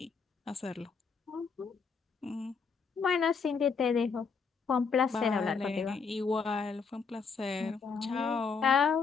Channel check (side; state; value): right; quieter; 5.4 dB